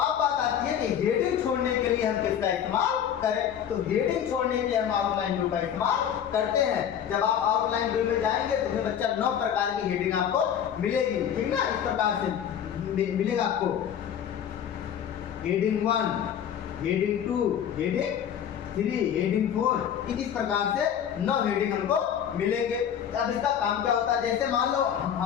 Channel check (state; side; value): quieter; right; 9.1 dB